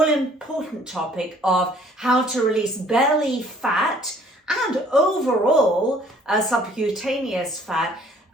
topic of how to release belly fat and overall subcutaneous fat,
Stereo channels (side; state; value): both; normal; correlation 0.57